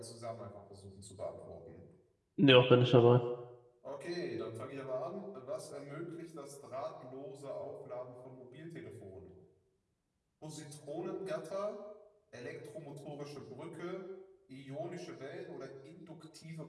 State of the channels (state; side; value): identical; both; correlation 1.00